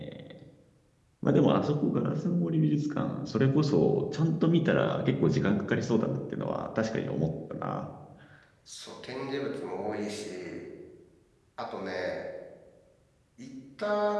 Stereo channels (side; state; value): both; identical; correlation 1.00